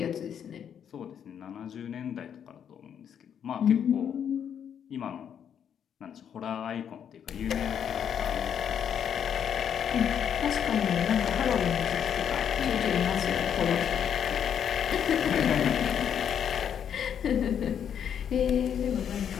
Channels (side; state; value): right; quieter; 8.5 dB